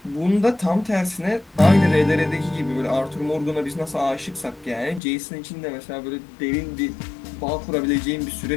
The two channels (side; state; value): right; drops out; at 5.0 s